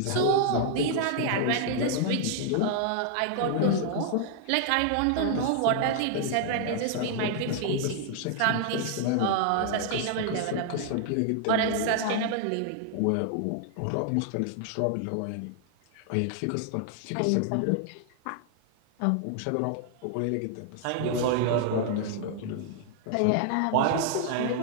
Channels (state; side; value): different; both; correlation 0.00